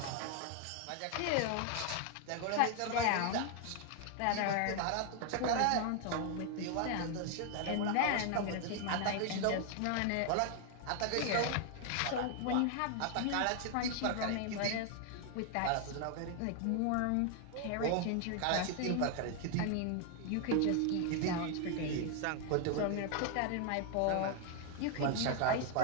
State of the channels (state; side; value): different; both; correlation 0.00